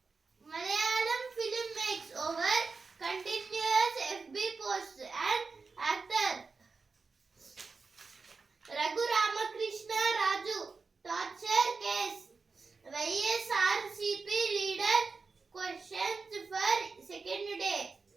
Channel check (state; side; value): quieter; left; 4.5 dB